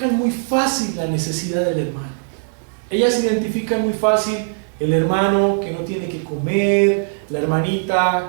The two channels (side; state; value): left; silent; digital silence